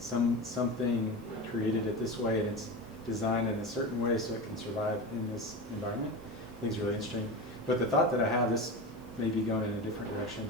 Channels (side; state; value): left; noise; hiss, 30 dB below the sound